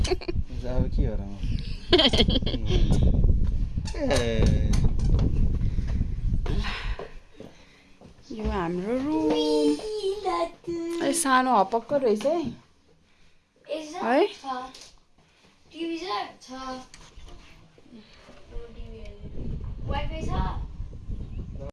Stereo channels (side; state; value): both; identical; correlation 1.00